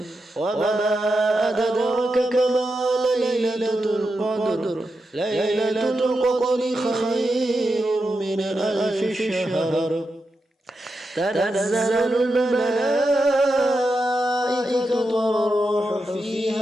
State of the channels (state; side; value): normal; both; correlation 0.88